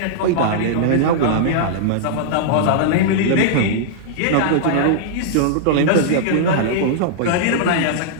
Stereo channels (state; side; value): different; both; correlation -0.02